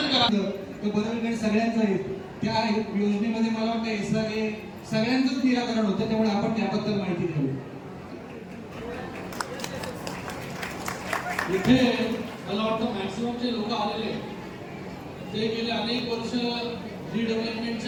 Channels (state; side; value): identical; both; correlation 1.00